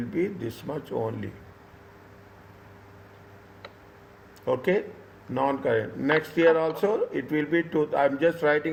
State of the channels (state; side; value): identical; both; correlation 1.00